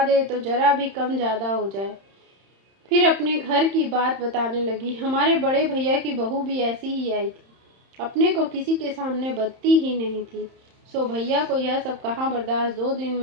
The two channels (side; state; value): left; late; 31 ms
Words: दे तो जरा भी कम ज़्यादा हो जाए। फिर अपने घर की बात बताने लगी। हमारे बड़े भैया की बहू भी ऐसी ही आई थी, अपने को किसी के सामने बदती ही नहीं थी। सो भैया को यह सब कहाँ बर्दाश्त, 2 दिन